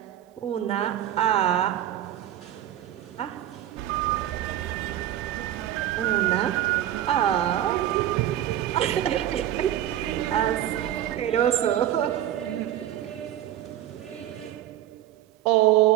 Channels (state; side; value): quieter; left; 12.3 dB